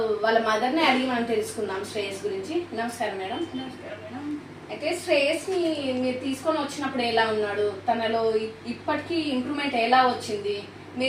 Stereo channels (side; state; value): both; identical; correlation 1.00